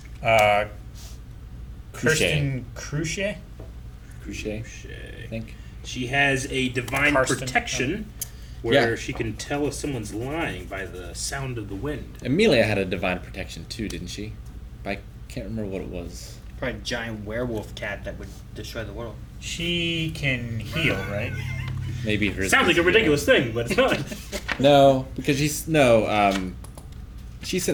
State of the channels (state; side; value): identical; both; correlation 1.00